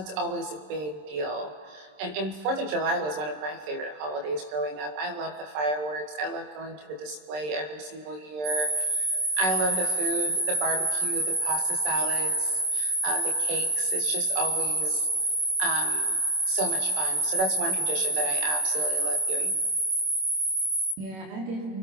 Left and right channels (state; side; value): late; left; 27 ms